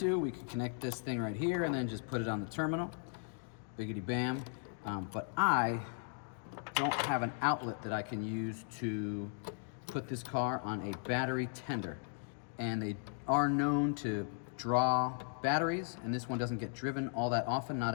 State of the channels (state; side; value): silent; right; 53 dB below the other